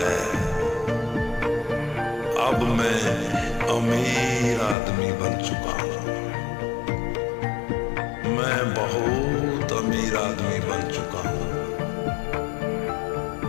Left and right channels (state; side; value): drops out; right; at 4.8 s